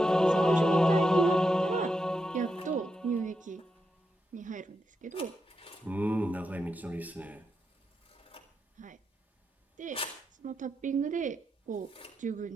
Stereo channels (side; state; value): both; normal; correlation 0.85